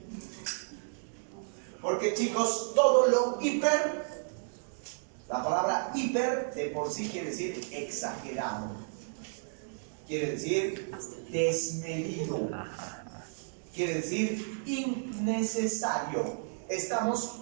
Porque, chicos, todo lo hiper, la palabra hiper de por sí quiere decir exagerado. Quiere decir desmedido. Quiere decir innecesario. Estamos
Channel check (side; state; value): left; silent; digital silence